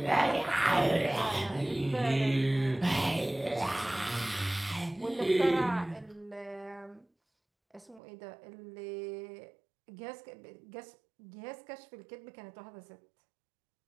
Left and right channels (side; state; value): left; drops out; at 8.0 s